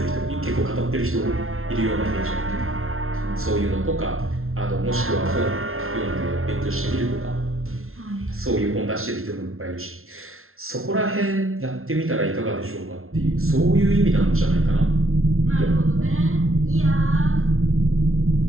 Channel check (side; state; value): left; late; 0.62 ms